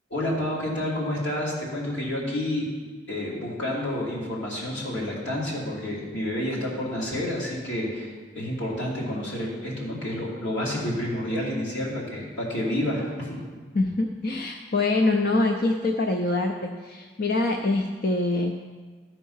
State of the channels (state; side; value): normal; both; correlation 0.55